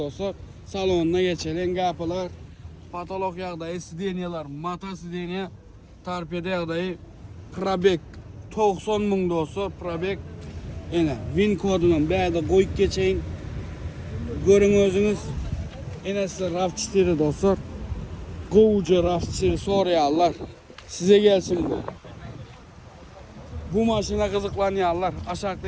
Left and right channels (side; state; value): both; identical; correlation 1.00